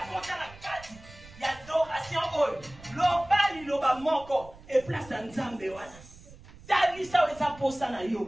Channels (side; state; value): right; noise; rumble, 20 dB below the sound